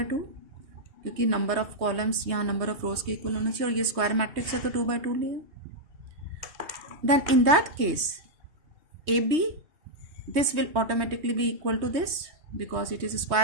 2, क्योंकि number of columns यहाँ number of रोज के equal होना चाहिए और ये square matrix है तो 2 by 2 लिया. Then in that case AB, this will automatically be equal to this because it is a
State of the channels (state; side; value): late; left; 3.2 ms